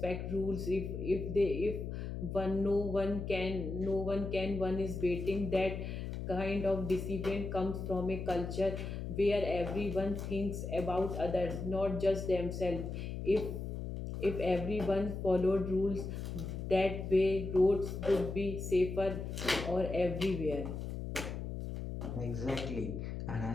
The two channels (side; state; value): left; noise; hum, 5 dB below the sound